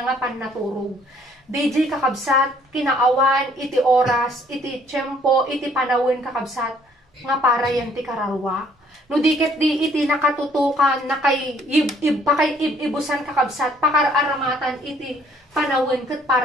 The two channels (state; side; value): normal; both; correlation 0.62